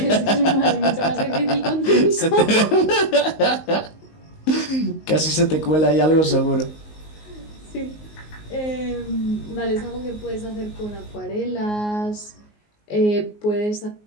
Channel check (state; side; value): late; right; 19 ms